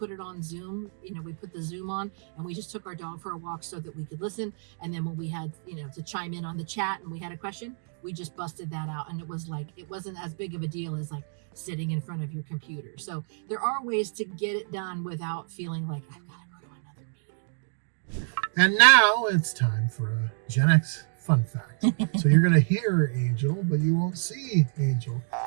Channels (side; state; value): left; silent; digital silence